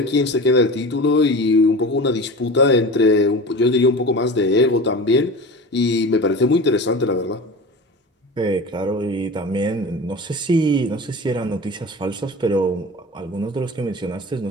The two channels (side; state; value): both; normal; correlation 0.33